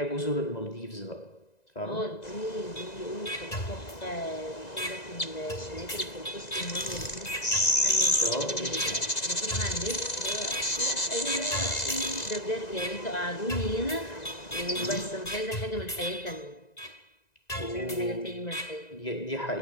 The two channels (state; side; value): late; right; 1.9 ms